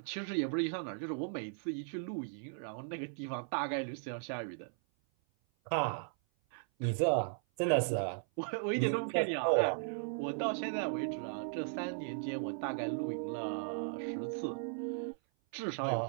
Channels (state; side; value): silent; left; 53 dB below the other